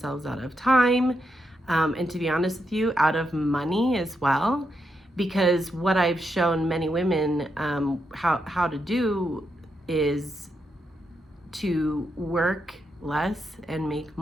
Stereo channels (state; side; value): normal; both; correlation 0.83